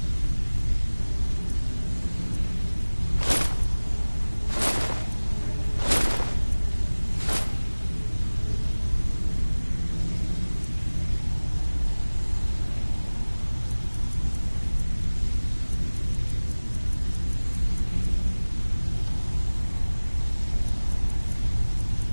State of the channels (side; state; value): both; inverted; correlation -1.00